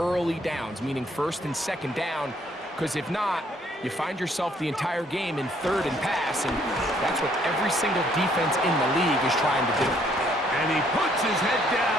downs, meaning 1st and 2nd down, because if not, you find yourself the entire game in 3rd and pass, and that's what every single defense in the league is trying to do. And he puts his head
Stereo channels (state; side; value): normal; both; correlation 0.66